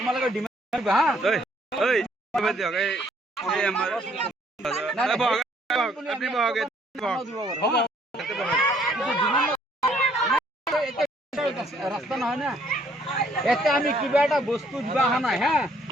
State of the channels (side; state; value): both; normal; correlation 0.65